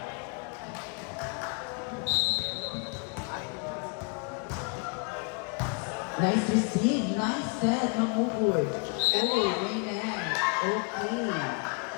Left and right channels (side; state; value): right; quieter; 35.4 dB